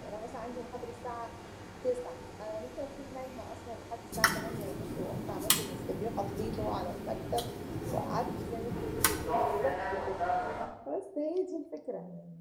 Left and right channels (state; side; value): identical; both; correlation 1.00